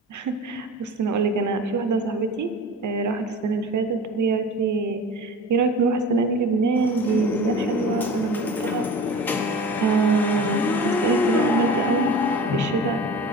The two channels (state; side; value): normal; both; correlation 0.37